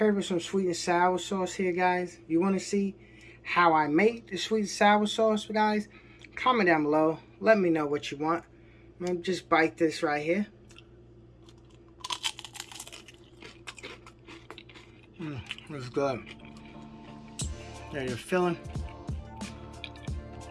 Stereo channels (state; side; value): identical; both; correlation 1.00